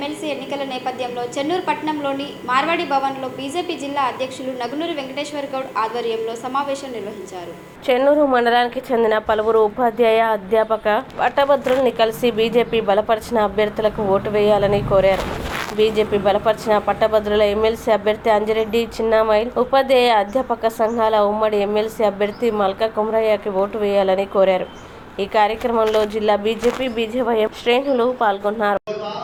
ఎన్నికల నేపథ్యంలో చెన్నూరు పట్టణంలోని మార్వాడి భవన్లో బీజేపీ జిల్లా అధ్యక్షులు నగునూరి వెంకటేశ్వర గౌడ్ ఆధ్వర్యంలో సమావేశం నిర్వహించారు. చెన్నూరు మండలానికి చెందిన పలువురు ఉపాధ్యాయ అధ్యాపక పట్టభద్రుల్ని కలిసి బీజేపీ బలపరిచిన అభ్యర్థులకు ఓటు వేయాలని కోరారు. బీజేపీ బలపరిచిన పట్టభద్రుల ఎమ్మెల్సీ అభ్యర్థి అంజిరెడ్డి చిన్నామైల్, ఉపాధ్యాయ అధ్యాపక సంఘాల ఉమ్మడి ఎమ్మెల్సీ అభ్యర్థి మల్కా కుమరయ్యకి ఓటు వేయాలని కోరారు. ఈ కార్యక్రమంలో జిల్లా బీజేపీ బీజేవైఎం శ్రేణులు పాల్గొన్నారు.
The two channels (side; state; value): both; identical; correlation 1.00